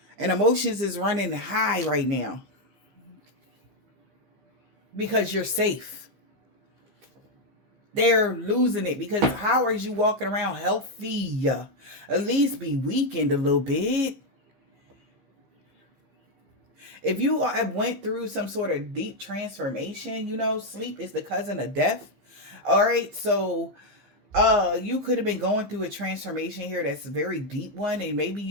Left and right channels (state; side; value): late; left; 15 ms